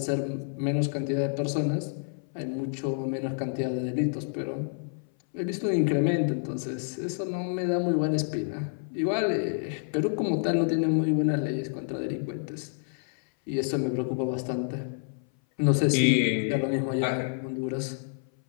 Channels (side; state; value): right; silent; 57 dB below the other